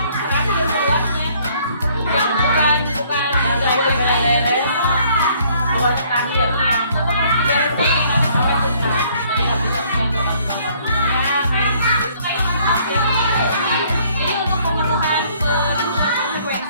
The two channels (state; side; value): inverted; both; correlation -0.62